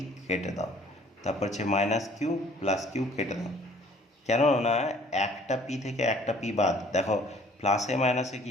কেটে দাও, তারপর হচ্ছে মাইনাস কিউ প্লাস কিউ কেটে দাও। কেননা একটা পি থেকে একটা পি বাদ, দেখো প্লাসে মাইনাসে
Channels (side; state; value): both; normal; correlation 0.56